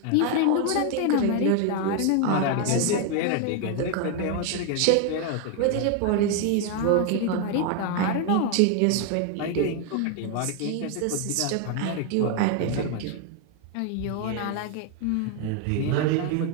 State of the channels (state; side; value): different; both; correlation 0.01